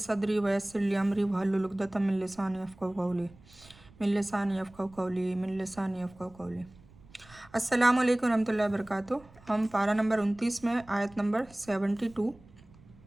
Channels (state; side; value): noise; right; rumble, 24 dB below the sound